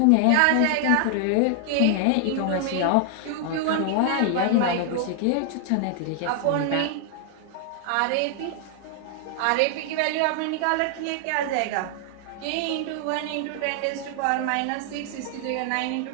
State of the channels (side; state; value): both; different; correlation 0.00